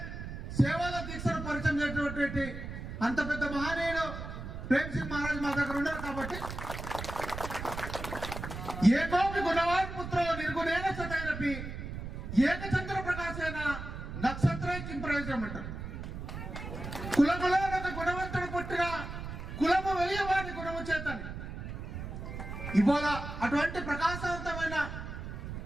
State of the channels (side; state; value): right; noise; rumble, 8 dB below the sound